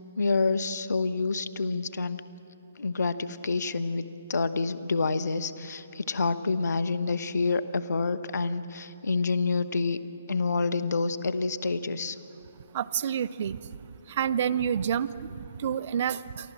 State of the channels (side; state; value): both; inverted; correlation -0.78